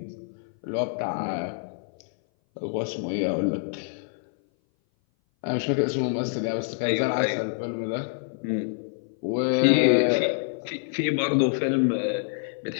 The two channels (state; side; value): silent; right; 58 dB below the other